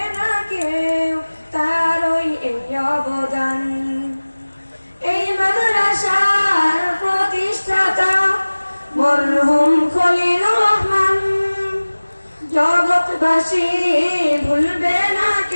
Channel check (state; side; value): inverted; both; correlation -1.00